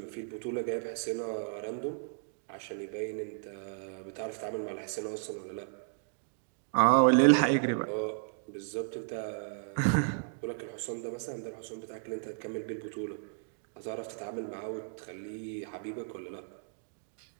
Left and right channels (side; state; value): left; silent; digital silence